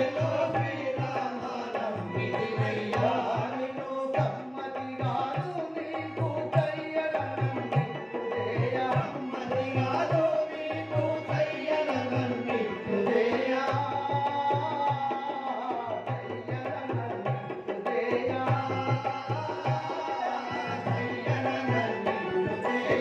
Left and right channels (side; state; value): both; identical; correlation 1.00